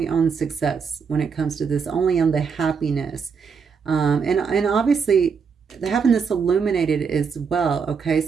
on success when it comes to this, only on the happiness. And obviously having this illuminated as well, okay?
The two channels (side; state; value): left; quieter; 5.9 dB